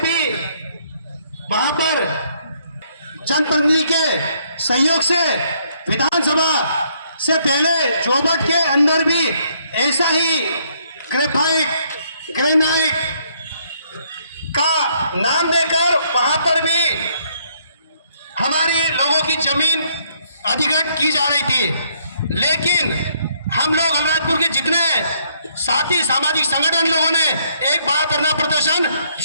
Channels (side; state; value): both; inverted; correlation -0.69